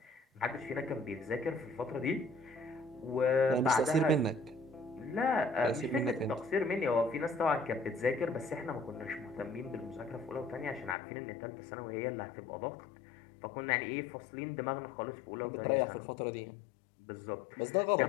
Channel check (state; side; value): drops out; right; at 11.0 s